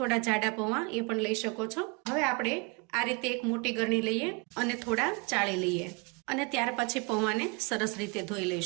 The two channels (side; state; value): left; quieter; 30.4 dB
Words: જાડા પૌવા એ પણ લઈ શકો છો. હવે આપણે આ રીતે એક મોટી ગરણી લઈએ અને થોડા ચાળી લઈએ અને ત્યાર પછી પૌવાને સરસ રીતે ધોઈ